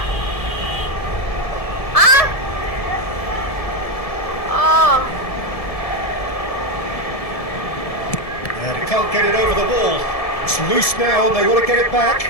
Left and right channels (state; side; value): late; right; 1.7 ms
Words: Hah? Oh. And he can't get it over the wall. It's loose now and they want to get it back.